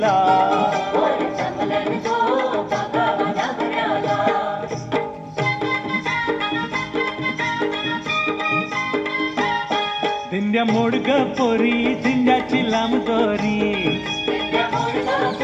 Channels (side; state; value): both; identical; correlation 1.00